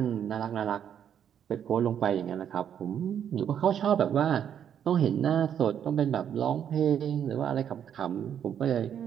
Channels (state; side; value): quieter; left; 9.0 dB